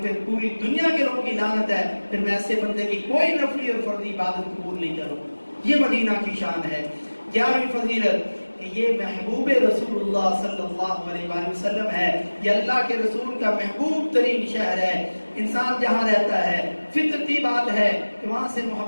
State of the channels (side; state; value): both; inverted; correlation -1.00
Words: پھر پوری دنیا کے لوگوں کی لعنت ہے، پھر میں ایسے بندے کی کوئی نفلی اور فرضی عبادت قبول نہیں کروں۔ یہ مدینہ کی شان ہے۔ 11ویں فضیلت کہ یہ محبوب رسول اللہ صلی اللہ علیہ وآلہ وسلم ہے، یہ اللہ کے رسول کا محبوب ترین شہر ہے۔ انسان جہاں رہتا ہے فطرتی بات ہے کہ وہاں سے